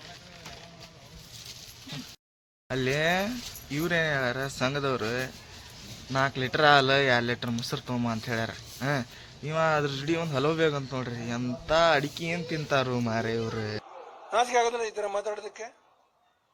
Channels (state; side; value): identical; both; correlation 1.00